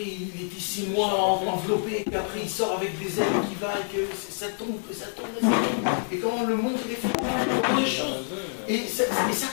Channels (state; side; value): silent; right; 60 dB below the other